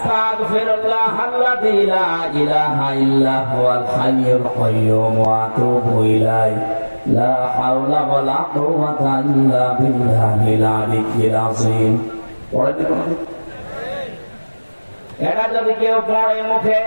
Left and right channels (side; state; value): both; inverted; correlation -1.00